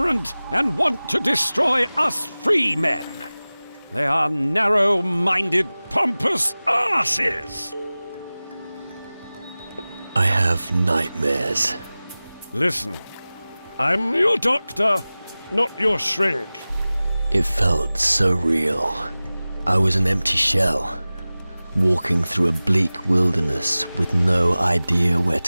and want to destroy us free men. They are narrow-minded, pompous asses. I have nightmares. Listen, I'm your doctor, not your shrink. It felt so real. I was an empty shell, walking through a bleak wilderness with no idea where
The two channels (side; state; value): both; inverted; correlation -0.98